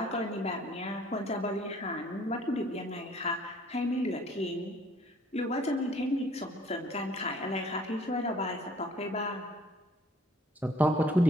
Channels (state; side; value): normal; both; correlation 0.57